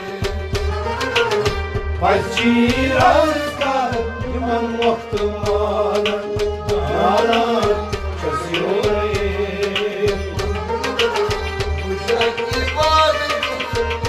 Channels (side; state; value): both; identical; correlation 1.00